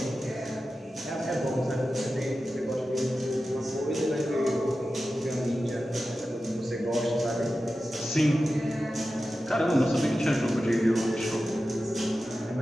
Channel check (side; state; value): both; normal; correlation 0.93